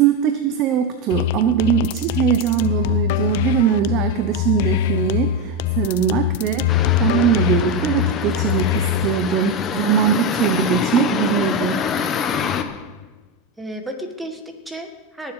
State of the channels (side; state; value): both; normal; correlation 0.11